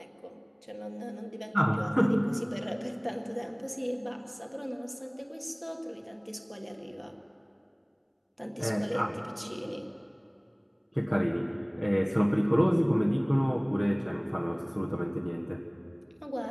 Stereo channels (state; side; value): identical; both; correlation 1.00